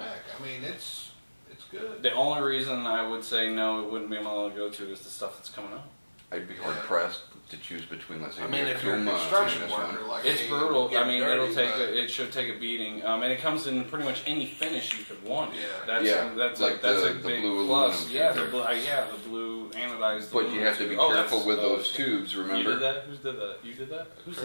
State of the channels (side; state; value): both; inverted; correlation -1.00